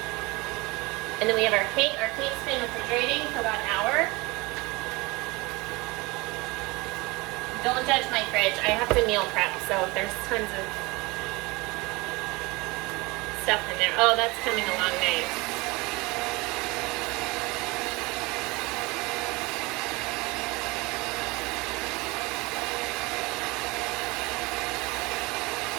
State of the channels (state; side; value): quieter; left; 24.3 dB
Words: And then we have our cake. Our cake's been refrigerating for about an hour. Don't judge my fridge. I have to meal prep, so there's tons of stuff in there. Oh, that's coming along nice.